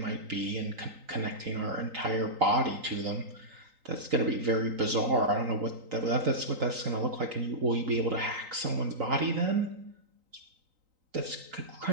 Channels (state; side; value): late; left; 3.9 ms